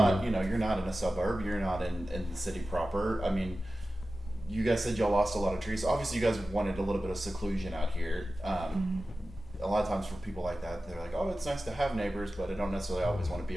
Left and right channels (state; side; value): normal; both; correlation 0.95